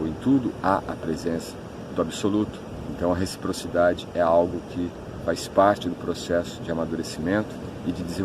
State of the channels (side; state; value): both; identical; correlation 1.00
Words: em tudo há a presença do Absoluto. Então a reciprocidade é algo que faz parte do processo de amadurecimento e de